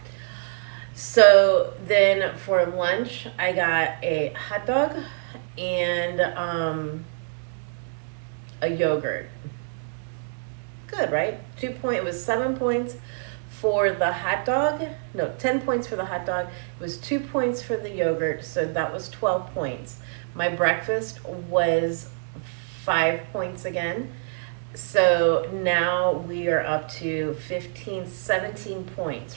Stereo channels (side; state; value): left; silent; 61 dB below the other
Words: So then for lunch, I got a hot dog and a yogurt. Good, right? It was 7 points for the hot dog. No, 10 points for the hot dog. It was 2 points for the yogurt, so that was 12 points. My breakfast was 5 points again. So now we are up to 17